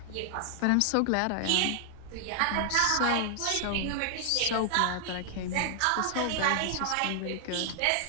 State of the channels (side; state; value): both; different; correlation 0.00